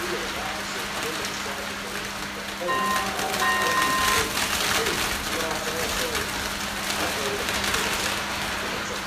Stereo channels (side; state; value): both; identical; correlation 1.00